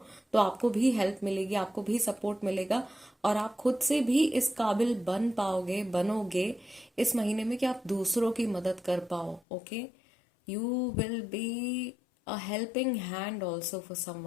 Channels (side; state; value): right; drops out; at 9.4 s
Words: तो आपको भी हेल्प मिलेगी, आपको भी सपोर्ट मिलेगा, और आप खुद से भी इस काबिल बन पाओगे, बनोगे इस महीने में कि आप दूसरों की मदद कर पाओ, okay. You will be a helping hand also for